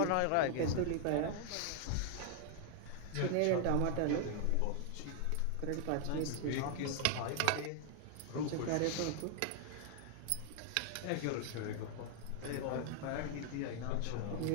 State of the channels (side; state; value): both; different; correlation 0.00